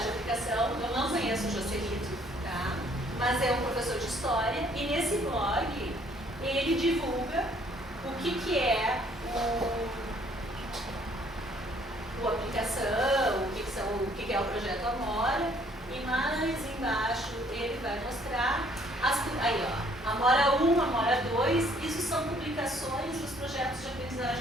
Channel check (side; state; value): both; normal; correlation 0.62